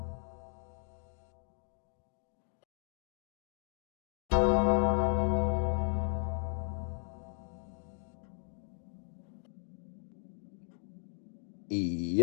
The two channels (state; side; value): silent; right; digital silence